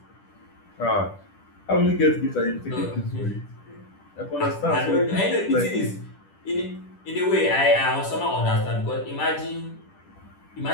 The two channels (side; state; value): right; late; 10 ms